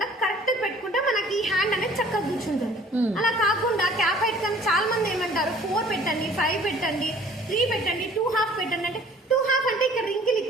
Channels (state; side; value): normal; both; correlation 0.53